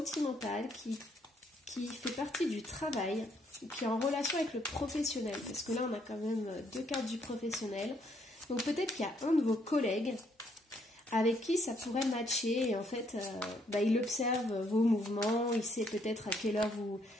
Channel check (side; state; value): both; normal; correlation 0.70